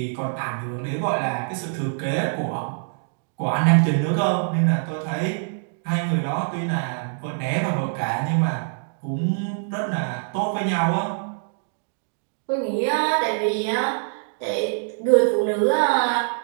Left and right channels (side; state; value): left; silent; digital silence